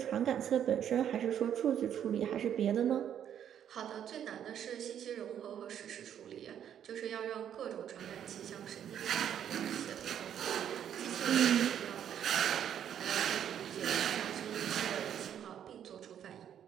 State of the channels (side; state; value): left; quieter; 9.5 dB